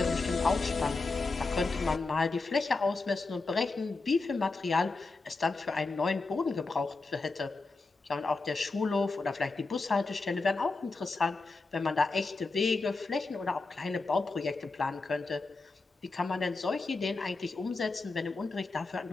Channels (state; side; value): quieter; right; 3.7 dB